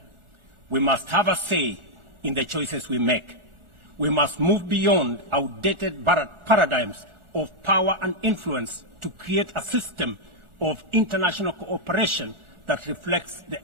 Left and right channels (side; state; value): left; late; 1.4 ms